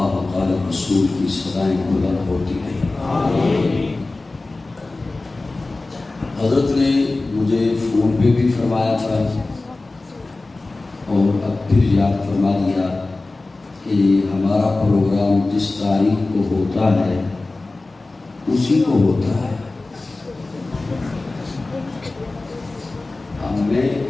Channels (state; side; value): quieter; right; 3.2 dB